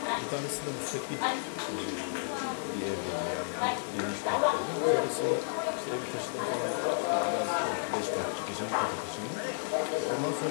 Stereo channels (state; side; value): silent; right; digital silence